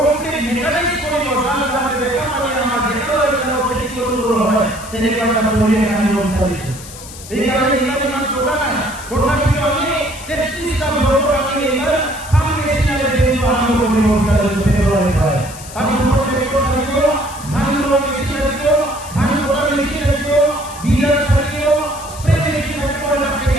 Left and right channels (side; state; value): left; noise; hiss, 15 dB below the sound